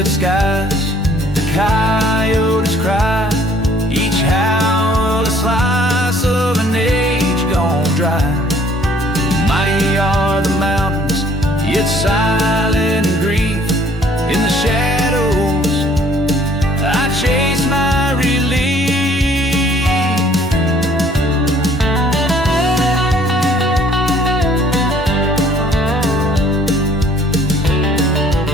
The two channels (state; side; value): normal; both; correlation 0.58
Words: skies, the coyotes cry, each howl a slice of an age gone dry. Mighty are the mountains, yet silent grief. In the shadows I chase my relief.